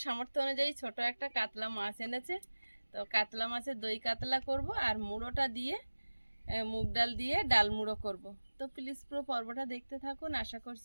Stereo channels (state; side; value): inverted; both; correlation -1.00